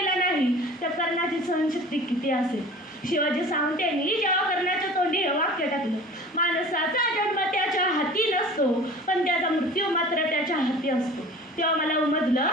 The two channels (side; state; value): both; normal; correlation 0.42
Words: नाही, त्या कर्णाची सहनशक्ती किती असेल. शिवाजी सावंत यांनी जेव्हा कर्णाच्या तोंडी हे वाक्य टाकलं, माणसाचा जन्म त्याच्या हाती नसतो पण त्याचा मृत्यू मात्र त्याच्या हाती असतो, तेव्हा मला उमजलं